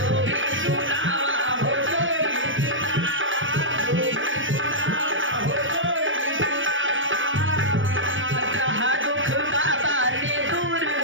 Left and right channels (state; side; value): late; left; 0.56 ms